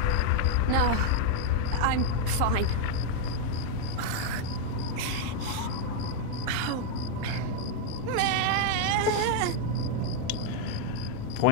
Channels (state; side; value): different; both; correlation 0.00